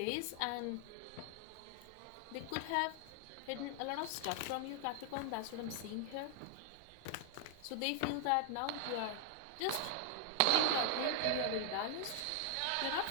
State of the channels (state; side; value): different; both; correlation 0.00